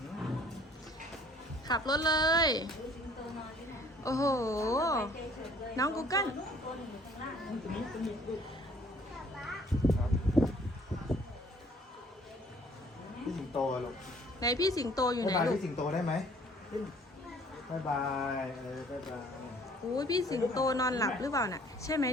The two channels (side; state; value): both; normal; correlation 0.56